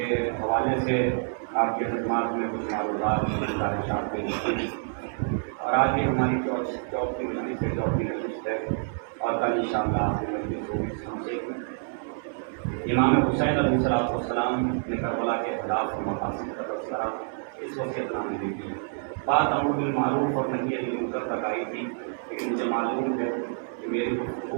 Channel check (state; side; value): silent; left; 60 dB below the other